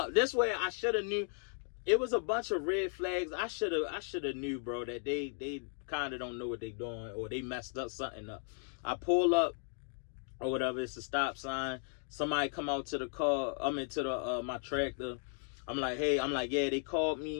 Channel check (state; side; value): silent; right; 54 dB below the other